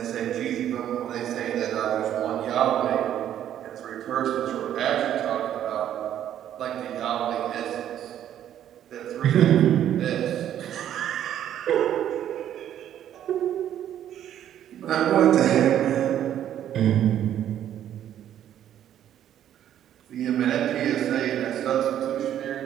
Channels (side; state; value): left; quieter; 10.8 dB